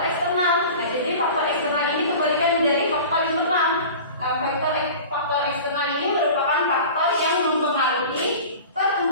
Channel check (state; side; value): inverted; both; correlation -0.37